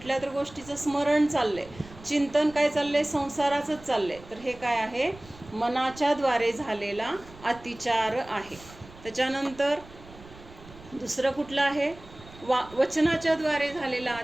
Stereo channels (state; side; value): noise; right; rumble, 20 dB below the sound